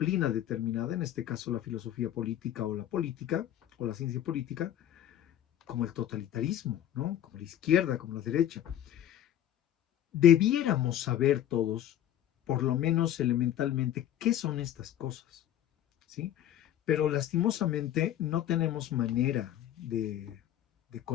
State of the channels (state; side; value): quieter; right; 11.4 dB